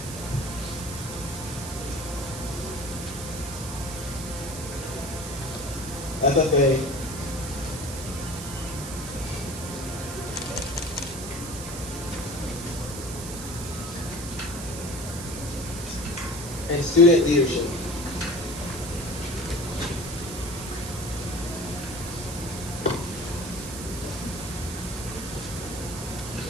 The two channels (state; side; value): noise; right; hiss, 9 dB below the sound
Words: FFA, and student leadership.